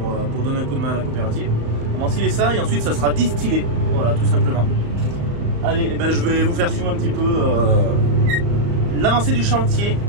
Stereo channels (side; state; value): left; late; 35 ms